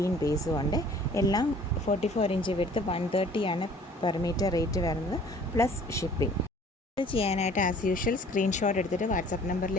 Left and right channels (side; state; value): both; normal; correlation 0.52